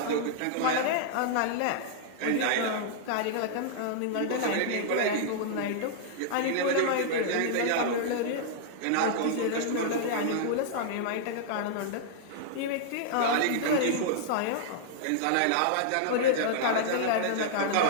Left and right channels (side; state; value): both; different; correlation -0.01